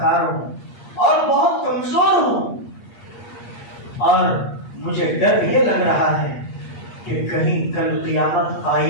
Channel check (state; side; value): late; right; 8.5 ms